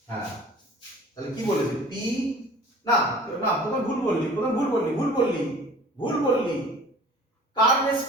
হ্যাঁ তাহলে কি বলেছে p, না না প্রথম ভুল বললি, প্রথম ভুল বললি, ভুল বললি, ভুল বললি, কার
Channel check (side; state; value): both; normal; correlation 0.46